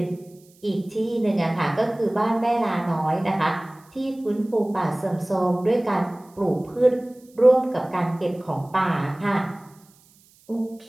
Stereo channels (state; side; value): noise; right; hiss, 30 dB below the sound